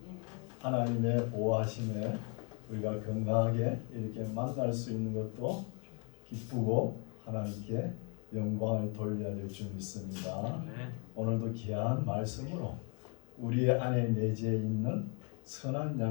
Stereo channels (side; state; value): right; quieter; 35.6 dB